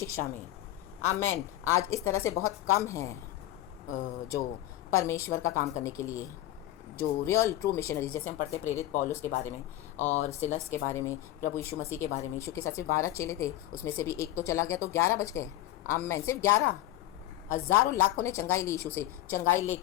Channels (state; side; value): quieter; right; 14.5 dB